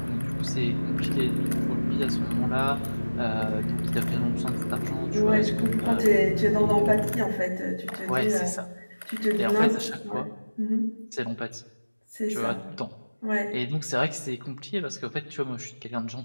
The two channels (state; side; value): inverted; both; correlation -1.00